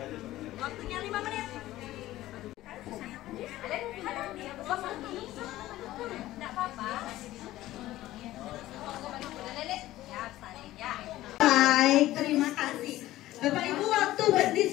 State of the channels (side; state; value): right; quieter; 15.6 dB